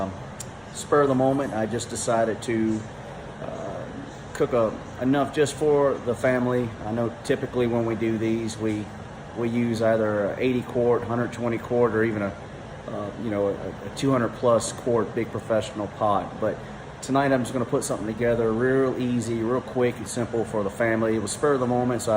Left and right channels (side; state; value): both; identical; correlation 1.00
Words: spur of the moment I just decided to cook enough just for the family. I know typically when we do these we use either a 80 quart, 120 quart, or even a 200 plus quart big professional pot, but tonight I'm just going to put something together real easy, real quick and simple for the family. It was spur of the moment, so I